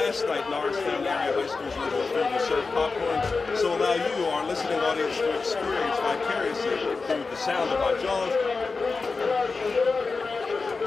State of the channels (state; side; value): quieter; right; 4.2 dB